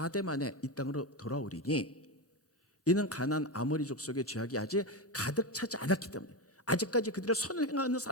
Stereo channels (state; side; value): normal; both; correlation 0.15